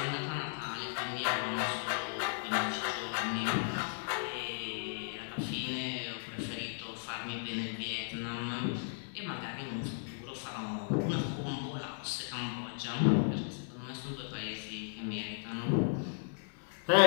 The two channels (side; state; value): right; silent; digital silence